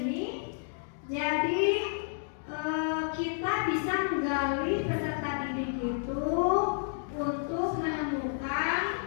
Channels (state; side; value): silent; right; digital silence